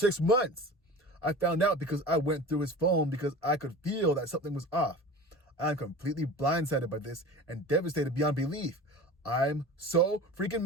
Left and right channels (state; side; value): normal; both; correlation 0.36